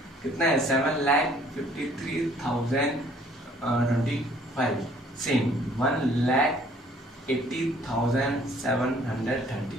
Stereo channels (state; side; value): normal; both; correlation 0.59